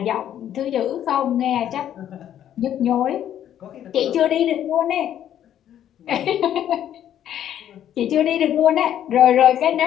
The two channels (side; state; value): right; quieter; 10.7 dB